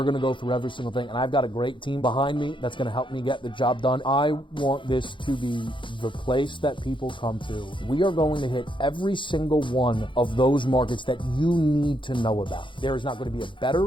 going to go through every single thing, and I've got a great team behind me that's going to help me get the job done. I want this to be the place that people come to. We are going to hit every single one of those markets that you need to know about. There is not going to be a better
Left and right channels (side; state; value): right; late; 0.24 ms